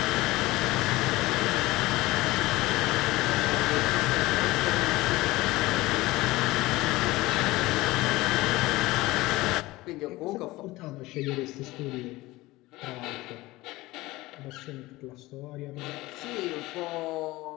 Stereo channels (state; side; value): quieter; right; 19.5 dB